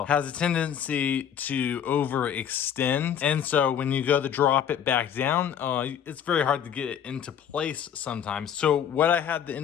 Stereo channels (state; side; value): quieter; right; 8.8 dB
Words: has a tendency to overextend. And so when you go to drop it back down, it's very hard to get it into place sometimes. So what I had to